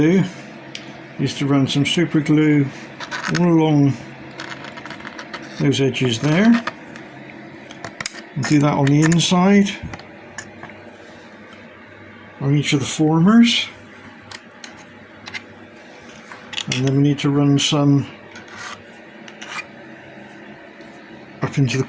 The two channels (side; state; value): both; identical; correlation 1.00